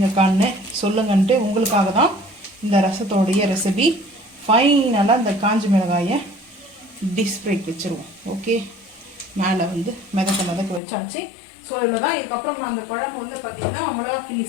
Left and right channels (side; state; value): right; drops out; at 10.8 s